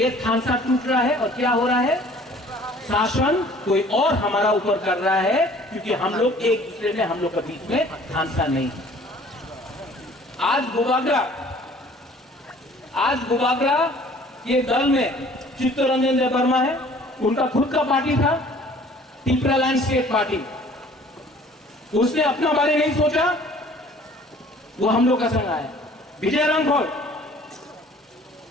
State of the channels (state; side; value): normal; both; correlation 0.52